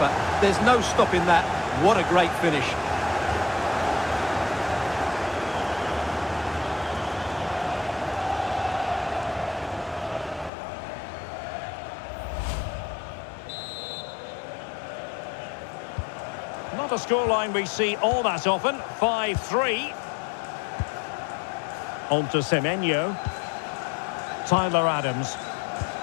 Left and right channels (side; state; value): right; drops out; at 10.5 s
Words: There's no stopping that. What a great finish. Not a scoreline we see all that often. 5-3. On to Semenyo. Tyler Adams.